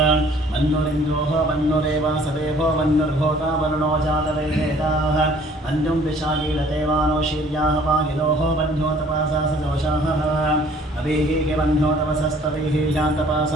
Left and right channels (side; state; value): both; normal; correlation 0.56